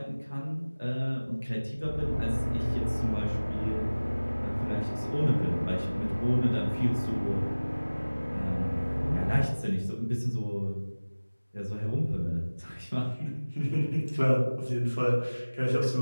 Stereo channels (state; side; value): inverted; both; correlation -1.00